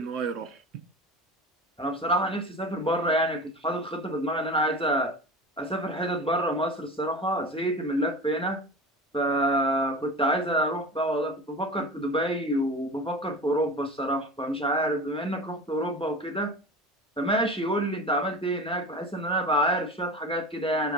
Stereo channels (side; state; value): both; normal; correlation 0.32